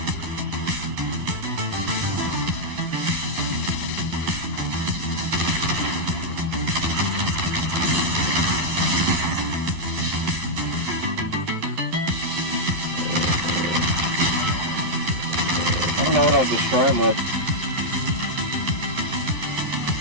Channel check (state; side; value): late; left; 11 ms